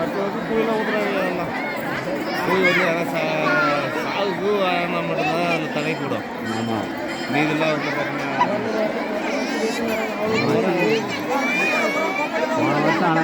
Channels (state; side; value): identical; both; correlation 1.00